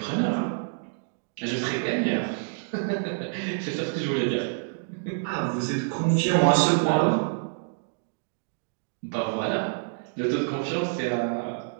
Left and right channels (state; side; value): silent; left; digital silence